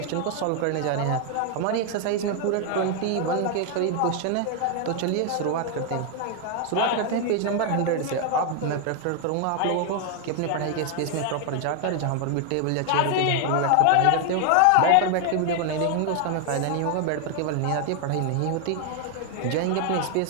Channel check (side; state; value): both; different; correlation 0.00